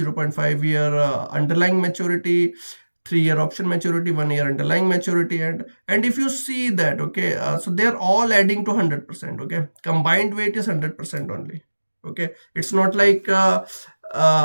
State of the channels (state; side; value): inverted; both; correlation -1.00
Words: year underlying maturity, 3 year option maturity, 1 year underlying maturity. And if you see that, okay, so they're all adding to 100%. Okay, combined weight is 100% only. Okay, it's not like